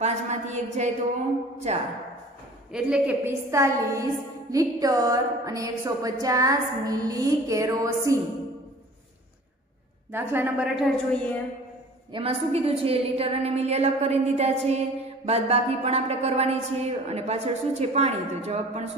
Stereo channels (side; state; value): both; normal; correlation 0.46